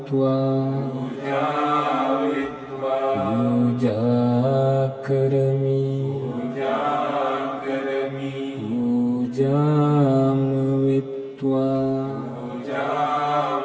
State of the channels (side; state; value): both; identical; correlation 1.00